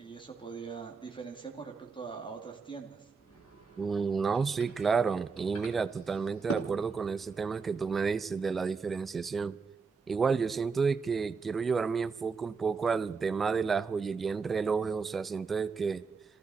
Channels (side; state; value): left; quieter; 5.1 dB